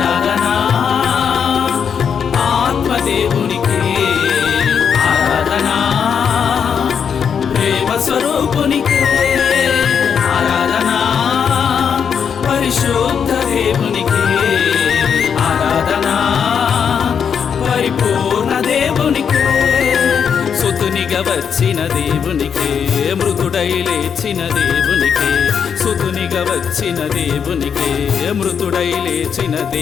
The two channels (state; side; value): quieter; right; 7.2 dB